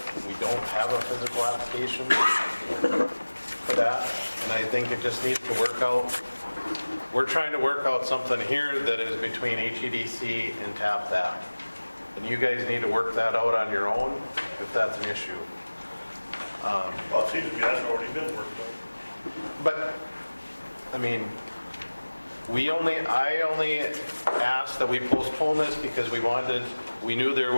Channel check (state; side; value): inverted; both; correlation -1.00